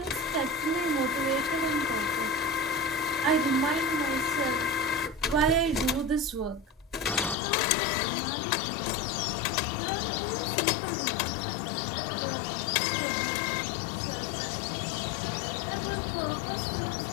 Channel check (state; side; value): drops out; right; at 7.4 s